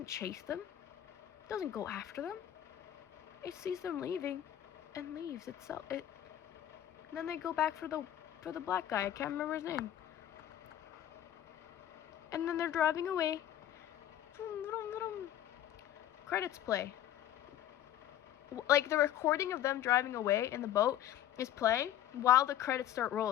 chase them. It doesn't go after them. It sees them leaving and leaves itself. And then they go back for the black guy. I can't remember his name. And then they're driving away. Credits play. Like, the recording of them driving away in the boat is playing while the credits start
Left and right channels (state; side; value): quieter; right; 11.7 dB